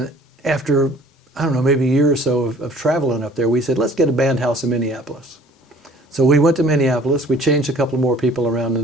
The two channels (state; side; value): normal; both; correlation 0.52